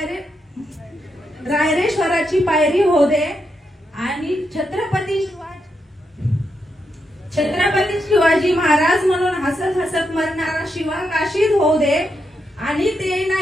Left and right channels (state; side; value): normal; both; correlation 0.83